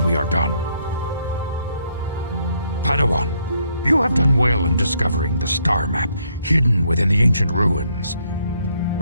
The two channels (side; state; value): both; inverted; correlation -0.72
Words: we are done. Padawan, you have done well in discovering the star map hidden within the ancient ruins.